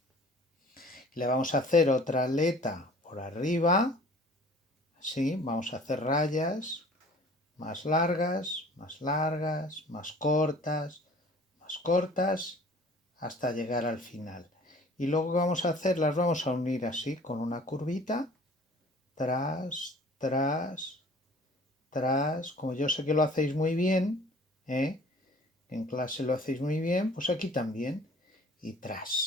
Le vamos a hacer otra aleta por arriba, así, vamos a hacer rayas más largas, más cortas, hasta llegar al final. Y luego vamos a hacer, las vamos a unir así, con una curvita, tras, como yo sé que lo hacéis muy bien, en clase lo hacéis muy bien, pues aquí también, y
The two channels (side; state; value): both; normal; correlation 0.49